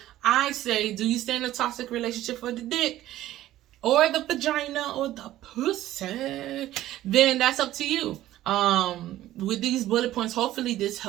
I say, do you stay in a toxic relationship for the dick or the vagina or the pussy? Then that's up to you. With these bullet points, hopefully this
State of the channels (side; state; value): left; quieter; 14.2 dB